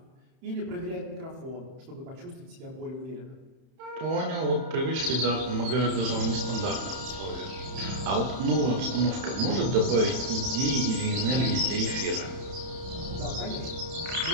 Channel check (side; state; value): left; late; 31 ms